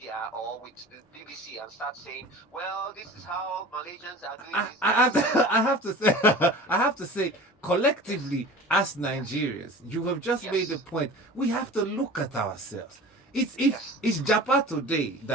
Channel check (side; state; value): both; normal; correlation 0.38